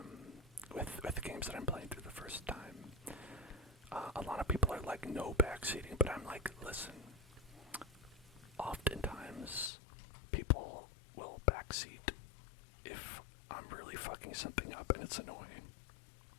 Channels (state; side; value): drops out; right; at 9.7 s